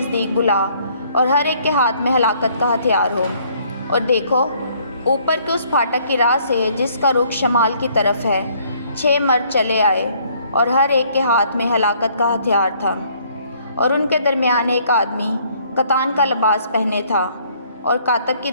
بلا اور ہر ایک کے ہاتھ میں ہلاکت کا ہتھیار ہو۔ اور دیکھو، اوپر کے اس پھاٹک کی راہ سے جس کا رخ شمال کی طرف ہے 6 مرد چلے آئے، اور ہر ایک کے ہاتھ میں ہلاکت کا ہتھیار تھا۔ اور ان کے درمیان ایک آدمی کتان کا لباس پہنے تھا، اور کاتب کی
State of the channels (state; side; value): inverted; both; correlation -0.63